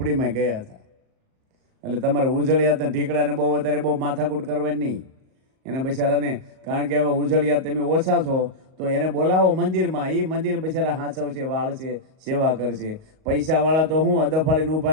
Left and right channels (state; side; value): late; left; 38 ms